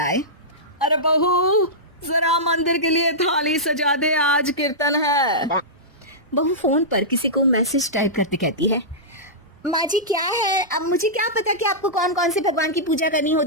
अरे बहू जरा मंदिर के लिए थाली सजा दे, आज कीर्तन है। बहू फोन पर किसी को मैसेज टाइप करते कहती है। माँ जी क्या है, अब मुझे क्या पता कि आपको कौन कौन से भगवान की पूजा करनी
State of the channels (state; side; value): normal; both; correlation -0.14